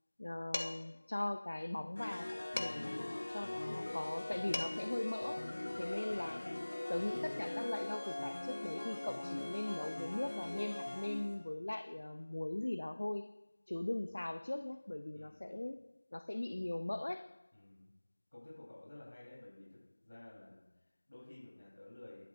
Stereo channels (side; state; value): both; inverted; correlation -1.00